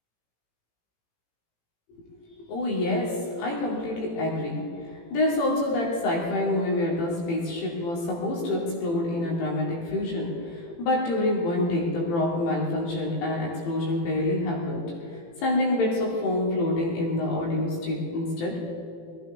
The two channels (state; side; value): late; right; 18 ms